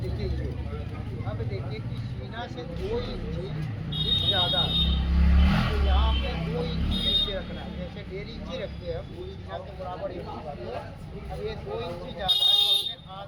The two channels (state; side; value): identical; both; correlation 1.00